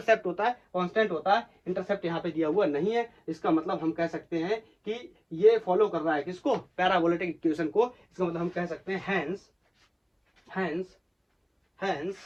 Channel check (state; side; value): identical; both; correlation 1.00